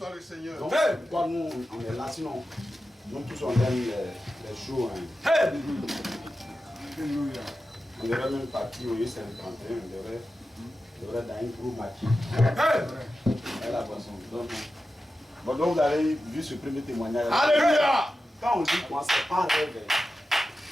le Seigneur. Donc, pourquoi nous, on est là, sinon, nous tous on aime les jours. Hein. Alléluia. On devrait même partir au U51, on devrait dans un gros maquis. Et la boisson. Donc vous avez vu ce premier témoignage. Alléluia. Quand on dit quoi, c'est pas un rêve.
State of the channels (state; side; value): normal; both; correlation 0.92